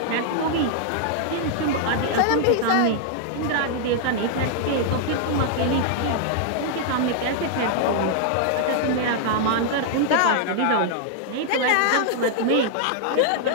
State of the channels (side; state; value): both; different; correlation -0.01